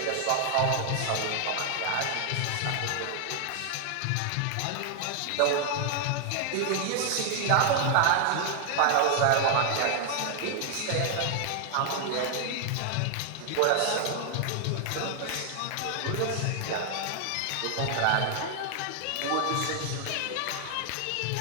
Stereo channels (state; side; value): different; both; correlation 0.00